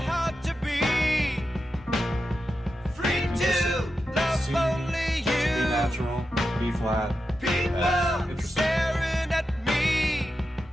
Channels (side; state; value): both; normal; correlation 0.89